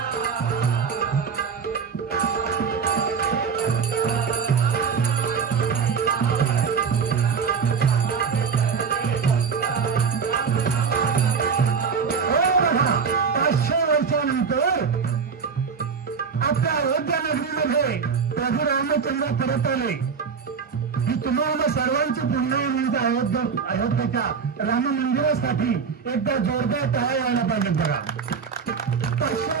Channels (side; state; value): left; quieter; 6.0 dB